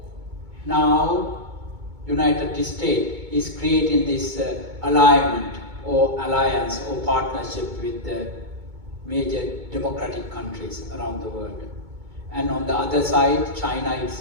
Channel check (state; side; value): late; left; 2.2 ms